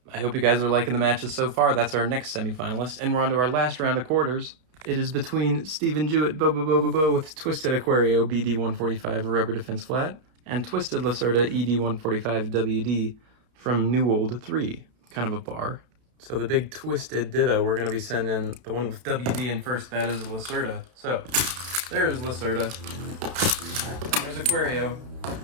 I hope you guys are liking the matches so far. That's our next semifinalist, and we're on to our last round of quarters. It is between Steven Jewett Bo with Twisted Aquario BD145 Rubber Defense Flat and Twisted Lacerta ED145 WD from New Old 3, kind of a bar. So the big twisted ditto, we're gonna be sending the one with WD in first, that is Lacerta. So there's Lacerta. There's Aquario.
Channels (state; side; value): late; left; 32 ms